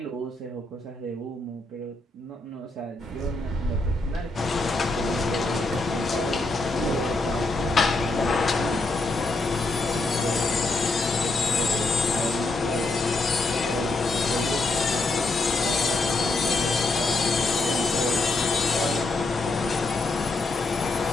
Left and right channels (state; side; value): quieter; right; 3.1 dB